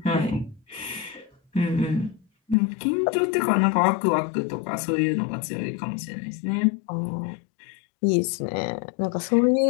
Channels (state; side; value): drops out; right; at 2.6 s